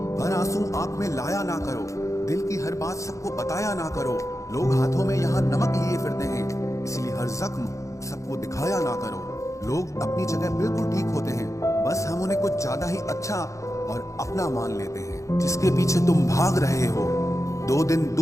हर आंसू आंख में लाया ना करो, दिल की हर बात सबको बताया ना करो। लोग हाथों में यहाँ नमक लिए फिरते हैं, इसलिए हर जख्म सबको दिखाया ना करो। लोग अपनी जगह बिल्कुल ठीक होते हैं, बस हम उन्हें कुछ ज्यादा ही अच्छा और अपना मान लेते हैं। जिसके पीछे तुम भाग रहे हो, 2 दिन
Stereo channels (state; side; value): late; right; 0.15 ms